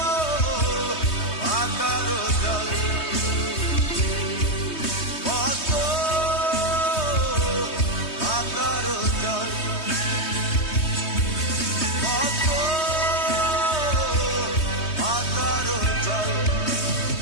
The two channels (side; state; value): right; late; 3.2 ms